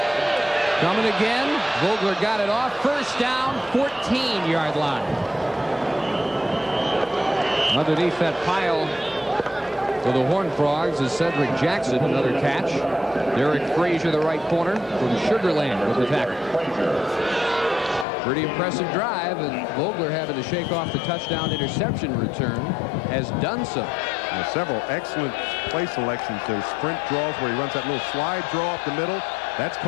Coming again. Vogler got it off. 1st down, 14-yard line. Underneath that pile for the Horned Frogs is Cedric Jackson. Another catch. Derek Frazier, the right corner from Sugar Land with the tackle. Pretty impressive drive, and Vogler having to shake off the touchdown interception return has done so. Several excellent play selections. Those sprint draws where he runs that little slide draw up the middle. That's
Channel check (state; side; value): drops out; right; at 18.1 s